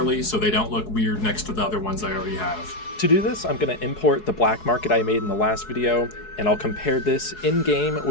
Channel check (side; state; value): right; late; 4.7 ms